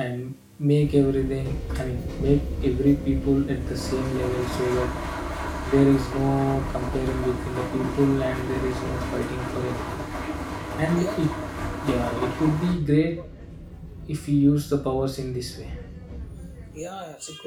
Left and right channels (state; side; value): identical; both; correlation 1.00